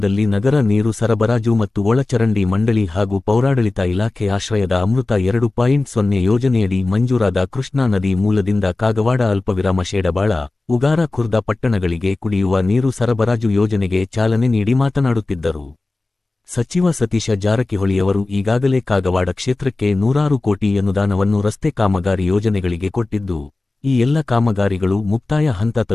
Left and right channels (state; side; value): quieter; right; 3.2 dB